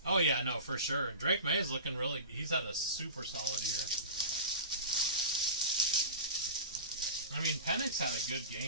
Oh yeah, no, for sure. Drake May is looking really, he's had a super solid year. I mean, Penix had a good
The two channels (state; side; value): inverted; both; correlation -0.31